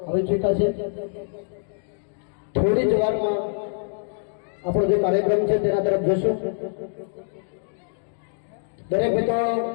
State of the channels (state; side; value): silent; right; digital silence